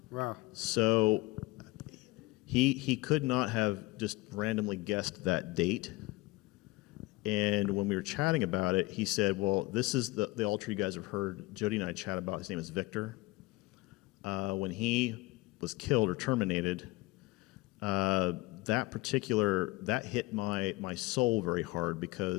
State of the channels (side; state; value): right; quieter; 21.2 dB